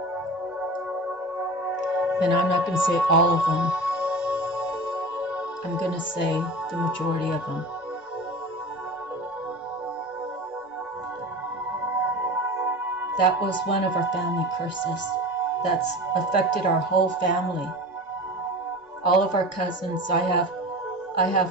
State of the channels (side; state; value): both; normal; correlation 0.32